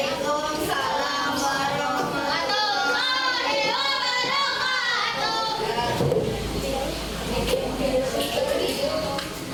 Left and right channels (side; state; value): both; identical; correlation 1.00